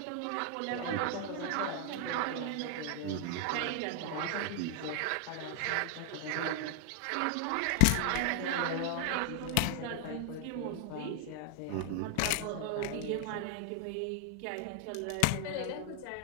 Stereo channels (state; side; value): different; both; correlation 0.00